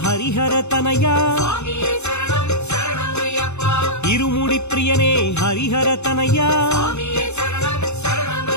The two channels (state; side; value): late; right; 0.81 ms